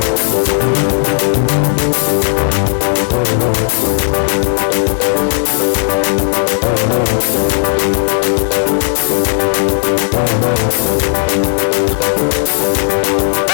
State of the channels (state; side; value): silent; right; 58 dB below the other